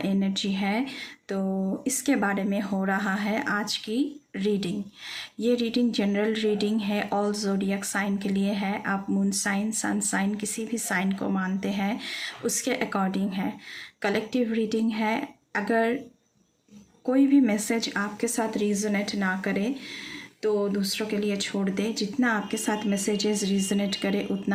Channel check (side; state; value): both; identical; correlation 1.00